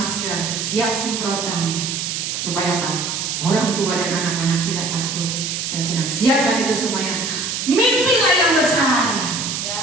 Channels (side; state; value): right; noise; hiss, 3 dB below the sound